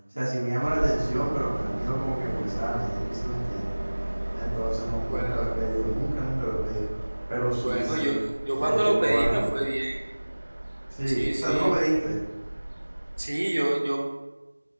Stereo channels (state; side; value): inverted; both; correlation -1.00